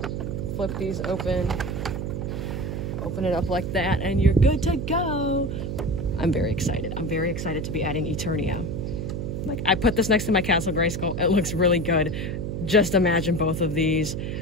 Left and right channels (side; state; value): right; noise; hum, 4 dB below the sound